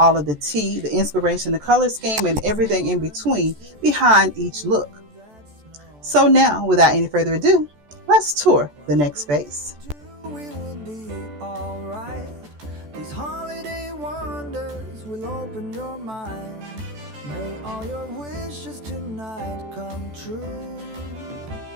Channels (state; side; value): late; left; 14 ms